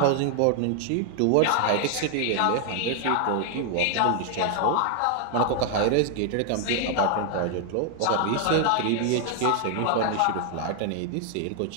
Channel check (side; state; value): both; different; correlation 0.00